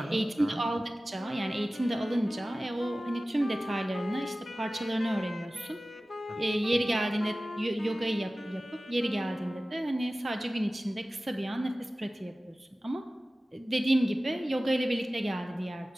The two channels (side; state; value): both; normal; correlation 0.97